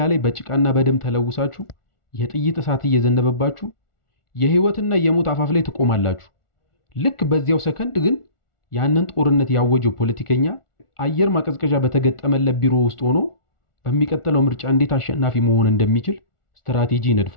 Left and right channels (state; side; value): late; right; 1.4 ms